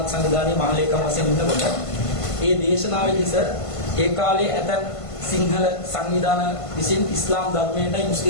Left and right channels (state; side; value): late; right; 1.5 ms